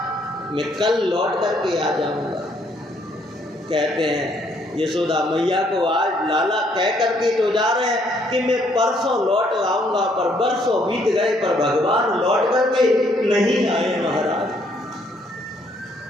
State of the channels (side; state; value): both; normal; correlation 0.68